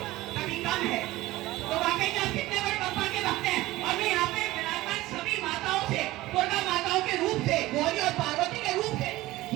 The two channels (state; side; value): quieter; left; 17.8 dB